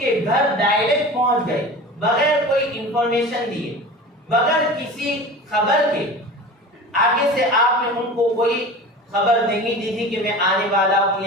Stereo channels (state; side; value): normal; both; correlation 0.35